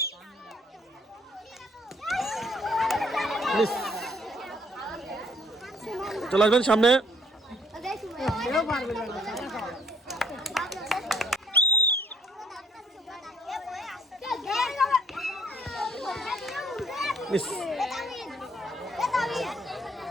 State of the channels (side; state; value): both; normal; correlation 0.62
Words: চলে আসবেন সামনে।